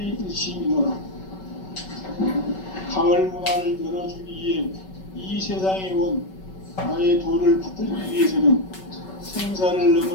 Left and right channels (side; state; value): right; late; 5.3 ms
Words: 가을 문화를 열어주기 위해 이 세상에 온 나의 도를 받들기 위해서는 생사를